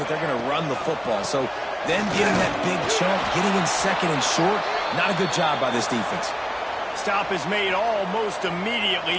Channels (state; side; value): identical; both; correlation 1.00